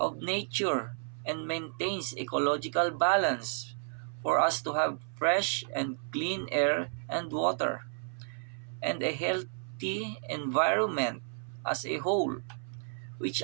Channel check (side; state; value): left; silent; 56 dB below the other